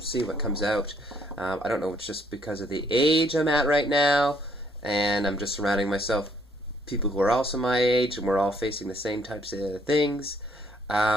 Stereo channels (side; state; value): both; normal; correlation 0.66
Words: see what comes out. I don't know, it's just because of the age I'm at right now, and I'm just surrounding myself people who are also my age, and we're all facing the same types of things.